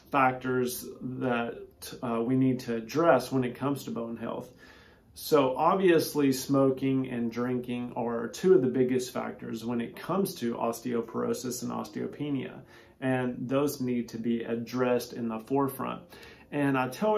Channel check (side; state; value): both; identical; correlation 1.00